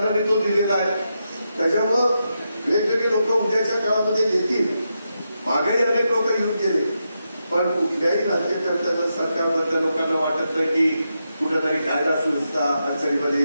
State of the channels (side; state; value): both; inverted; correlation -0.85